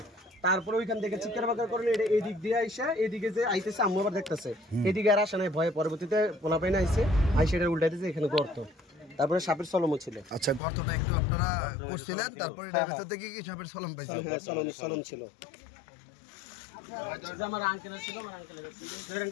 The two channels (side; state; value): right; drops out; at 10.6 s